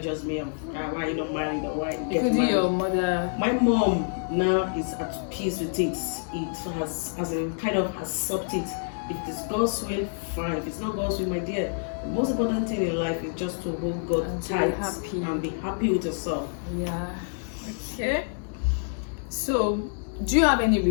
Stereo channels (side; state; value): right; silent; digital silence